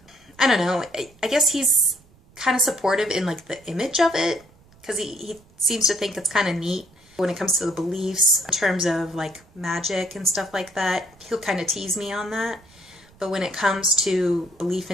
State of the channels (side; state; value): right; noise; rumble, 28 dB below the sound